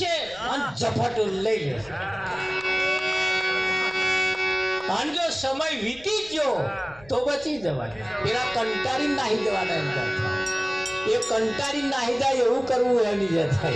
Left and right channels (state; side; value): noise; left; rumble, 24 dB below the sound